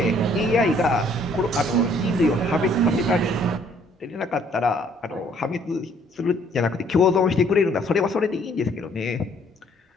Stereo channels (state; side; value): normal; both; correlation 0.62